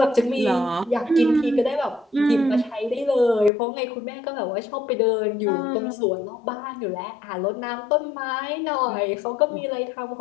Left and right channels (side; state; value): right; drops out; at 3.5 s